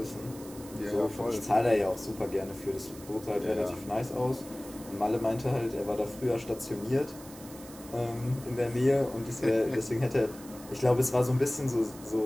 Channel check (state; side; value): noise; right; hiss, 18 dB below the sound